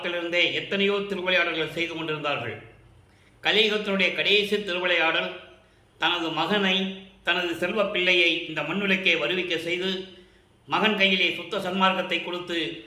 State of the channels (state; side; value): identical; both; correlation 1.00